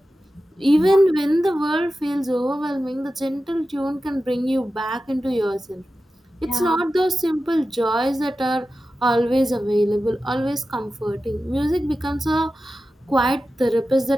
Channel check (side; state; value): both; normal; correlation 0.93